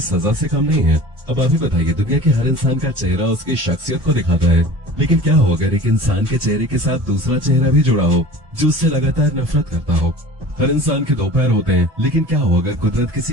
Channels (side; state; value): left; late; 1.2 ms